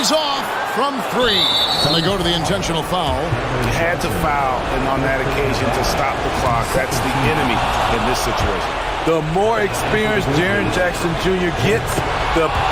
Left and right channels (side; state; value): both; identical; correlation 1.00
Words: off. from 3. And they go to the intentional foul. You had to foul, and on that occasion to stop the clock. That's the enemy in this situation. The more experienced Jaren Jackson Jr. gets, the